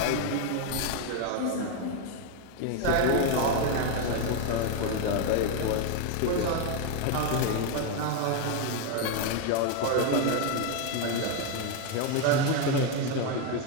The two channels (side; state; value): both; different; correlation 0.01